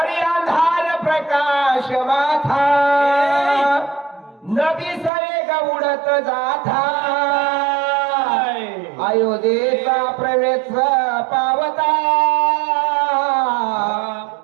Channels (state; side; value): drops out; left; at 5.1 s